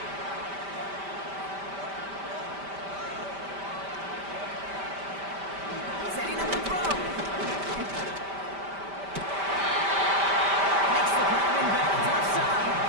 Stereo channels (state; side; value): late; left; 5.1 ms